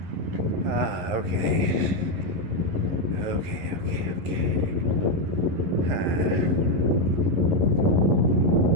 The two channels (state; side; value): late; left; 11 ms